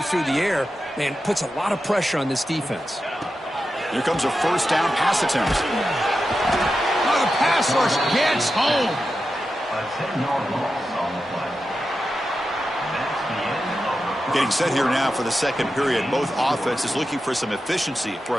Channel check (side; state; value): both; normal; correlation 0.90